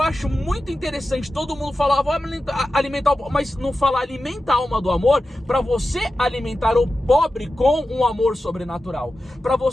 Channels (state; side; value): normal; both; correlation 0.93